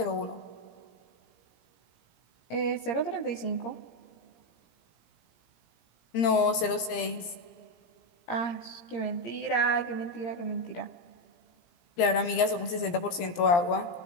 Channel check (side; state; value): right; late; 17 ms